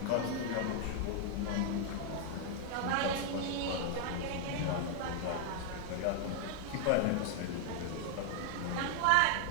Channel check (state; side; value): different; both; correlation 0.00